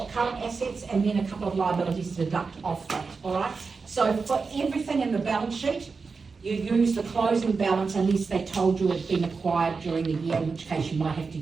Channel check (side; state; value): left; quieter; 4.7 dB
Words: current assets, and then a couple of liabilities to deduct off that, all right? So for everything in the balance sheet, you use the closing balance unless they told you it's been acquired during the year, in which case you might have to